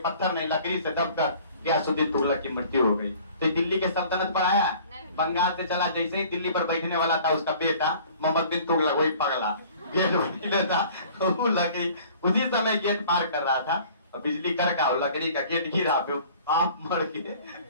ने लकड़ी से दबकर गयासुद्दीन तुगलक की मृत्यु हो गई। तो दिल्ली के सल्तनत पर आया, बंगाल से चला। जैसे ही दिल्ली पर बैठने वाला था उसका बेटा मोहम्मद बिन तुगलक, वही पगला गेट बैठने था, वो लकड़ी उसी समय गेट पार कर रहा था और बिजली करका लकड़ी का गेट गिरा, आप मर के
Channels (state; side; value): inverted; both; correlation -0.50